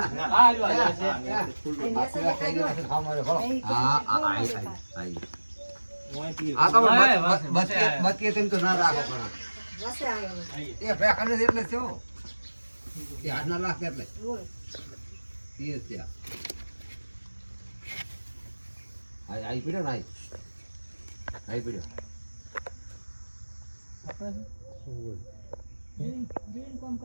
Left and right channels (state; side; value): inverted; both; correlation -1.00